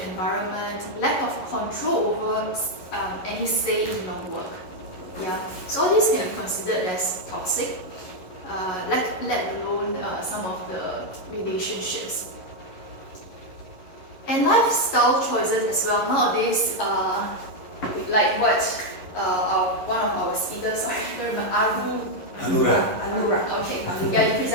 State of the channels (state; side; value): late; right; 11 ms